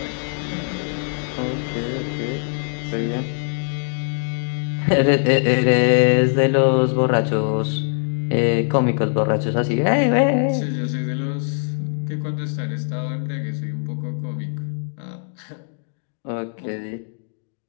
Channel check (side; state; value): right; silent; digital silence